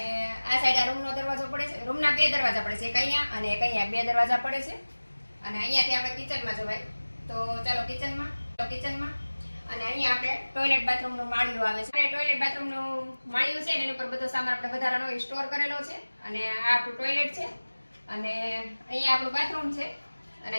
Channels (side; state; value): both; inverted; correlation -1.00